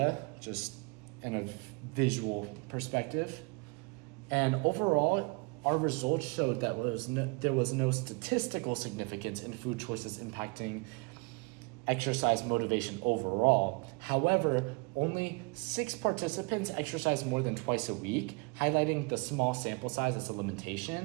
just in a visual perspective. And overall, our results showed that there was no statistical significance in food choices impacting exercise motivation overall. However, only 6 participants exercised more than twice a week, highlighting the small sample size as a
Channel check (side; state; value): left; quieter; 30.4 dB